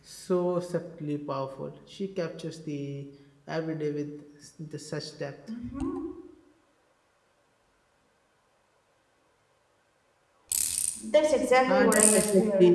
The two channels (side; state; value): both; identical; correlation 1.00